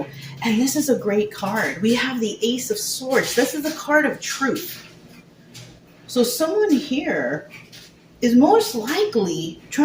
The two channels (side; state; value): both; identical; correlation 1.00